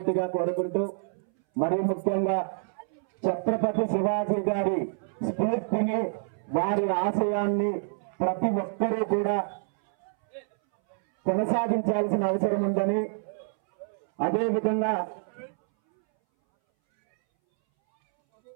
కోరుకుంటూ, మరి ముఖ్యంగా ఛత్రపతి శివాజీ గారి స్ఫూర్తిని, వారి ఆశయాన్ని ప్రతి ఒక్కరూ కూడా కొనసాగించాల్సిన అవసరం ఉందని, అదేవిధంగా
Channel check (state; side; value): silent; left; 60 dB below the other